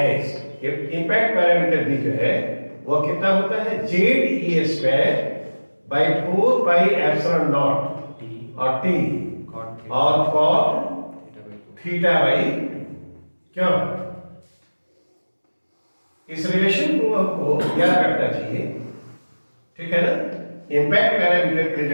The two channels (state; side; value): inverted; both; correlation -1.00